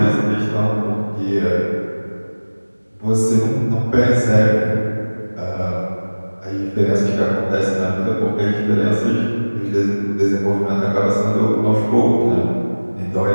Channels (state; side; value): inverted; both; correlation -1.00